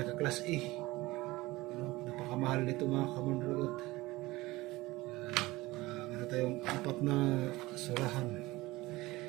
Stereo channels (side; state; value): left; quieter; 19.8 dB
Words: A. Napakamahal nito mga kamandragot. Meron tayong 4 na surahan.